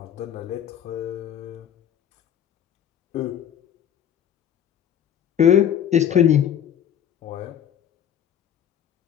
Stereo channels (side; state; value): right; quieter; 9.6 dB